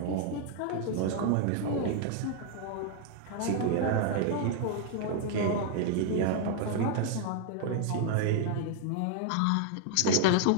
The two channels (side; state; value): both; different; correlation 0.00